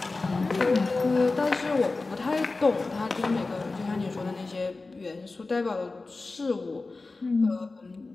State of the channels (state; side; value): quieter; right; 3.6 dB